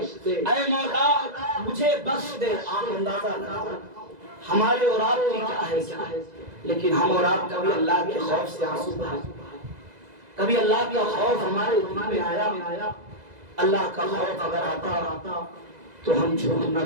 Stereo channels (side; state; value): left; late; 2.0 ms